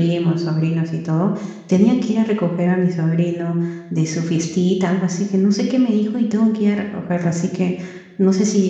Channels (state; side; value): identical; both; correlation 1.00